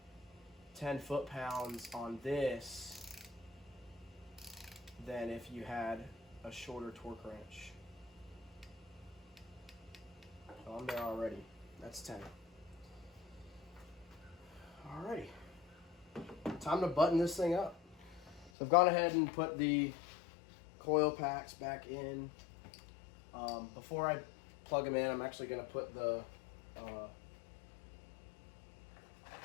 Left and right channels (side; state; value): right; drops out; at 18.5 s